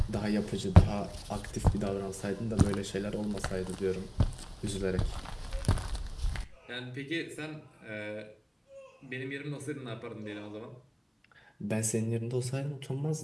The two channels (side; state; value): both; identical; correlation 1.00